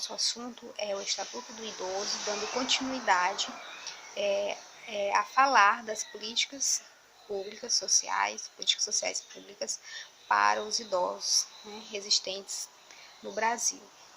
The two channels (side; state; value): both; identical; correlation 1.00